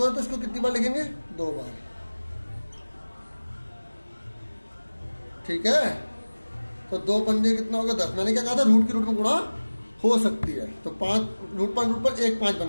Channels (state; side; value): inverted; both; correlation -1.00